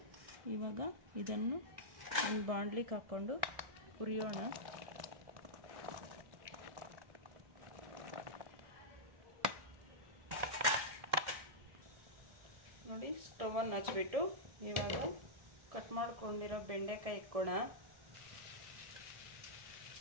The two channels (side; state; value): left; late; 1.7 ms